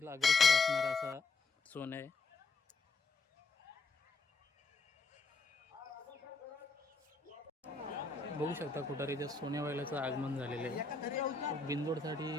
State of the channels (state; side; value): quieter; right; 3.9 dB